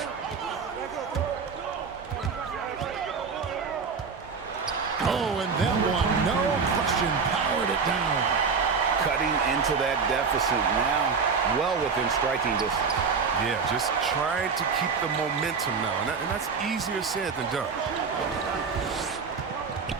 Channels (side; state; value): left; quieter; 5.4 dB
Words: Powered it down. Cutting into that deficit now, well within striking distance. Yeah, just trying to keep the momentum now, and that's easier said than done.